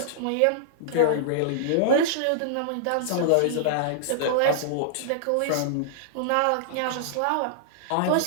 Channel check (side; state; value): both; different; correlation -0.02